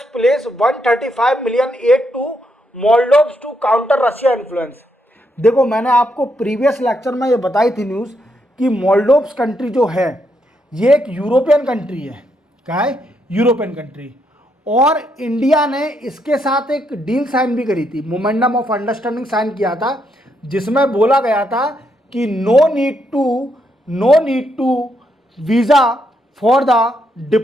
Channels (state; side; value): normal; both; correlation 0.78